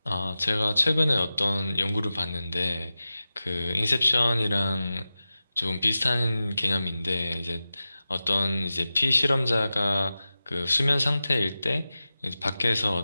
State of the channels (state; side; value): inverted; both; correlation -0.94